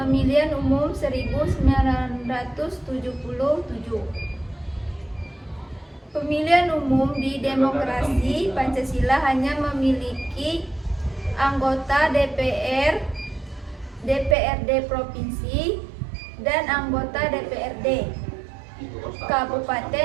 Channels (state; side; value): drops out; left; at 14.4 s